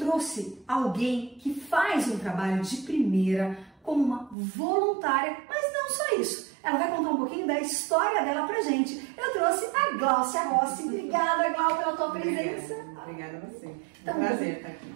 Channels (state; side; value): drops out; left; at 4.4 s